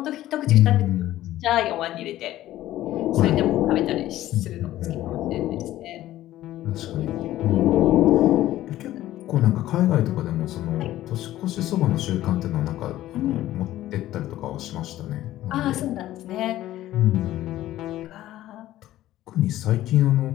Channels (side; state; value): right; quieter; 14.4 dB